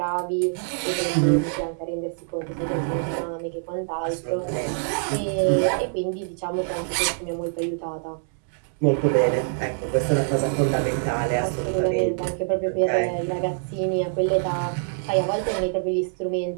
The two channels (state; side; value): silent; left; 62 dB below the other